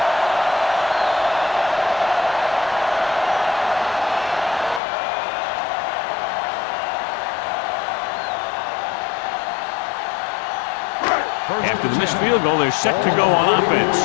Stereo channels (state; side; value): drops out; right; at 4.8 s